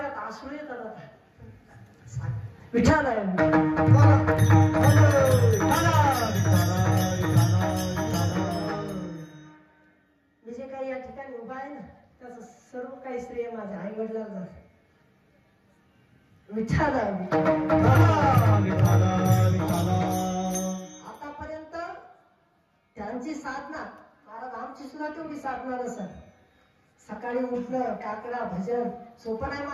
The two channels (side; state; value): both; identical; correlation 1.00